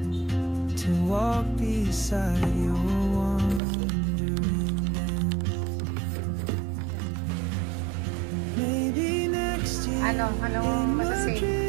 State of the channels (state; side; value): drops out; left; at 3.6 s